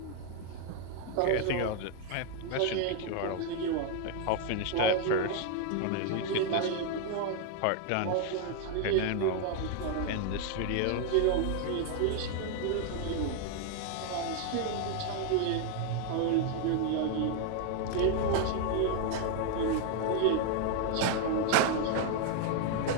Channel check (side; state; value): both; different; correlation 0.00